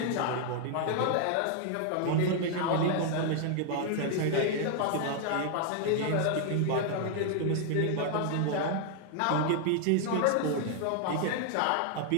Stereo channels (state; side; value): different; both; correlation 0.00